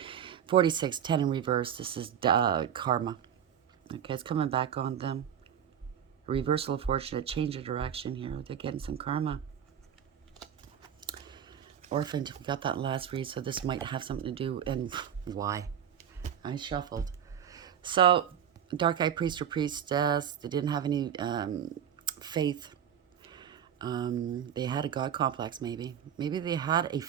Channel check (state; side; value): quieter; left; 9.1 dB